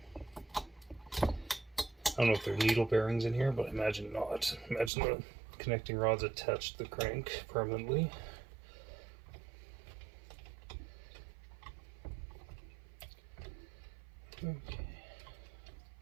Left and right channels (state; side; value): drops out; left; at 4.9 s